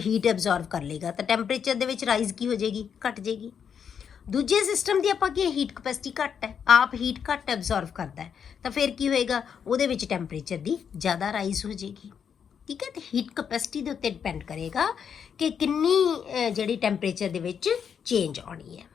ਐਬਜ਼ੌਰਬ ਕਰ ਲੇਗਾ, ਤਾਂ ਟੈਂਪਰੇਚਰ ਦੇ ਵਿੱਚ ਰਾਈਜ਼ ਕੀ ਹੋ ਜਾਏਗੀ, ਘਟ ਜਾਏਗੀ। ਦੂਜੇ ਸਿਸਟਮ ਦੀ ਆਪਾਂ ਕੀ ਹੀਟ ਕਪੈਸਿਟੀ ਘੱਟ ਹੈ, ਆਪ ਹੀਟ ਘੱਟ ਐਬਜ਼ੌਰਬ ਕਰਦਾ ਹੈ, ਤਾਂ ਫਿਰ ਕੀ ਹੋਏਗਾ, ਉਹਦੇ ਵਿੱਚ ਟੈਂਪਰੇਚਰ ਦੀ ਜ਼ਿਆਦਾ ਰਾਈਜ਼ ਹੋ ਜਾਏਗੀ। ਠੀਕ ਹੈ, ਤੇ ਹੀਟ ਕਪੈਸਿਟੀ ਦੇ ਉੱਤੇ ਡਿਪੈਂਡ ਕਰੇਗਾ ਕਿ ਕਿੰਨੀ ਜਿਹੜੀ ਟੈਂਪਰੇਚਰ ਦੇ ਵਿੱਚ ਚੇਂਜ ਆਉਣੀ ਹੈ।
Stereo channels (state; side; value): quieter; right; 7.5 dB